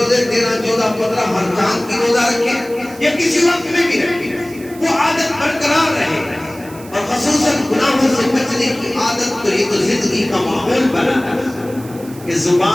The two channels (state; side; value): noise; right; hiss, 20 dB below the sound